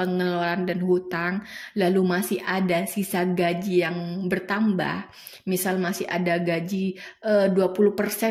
dan hutang, lalu masih ada sisa gaji yang bertambah, misal masih ada gaji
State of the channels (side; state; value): both; identical; correlation 1.00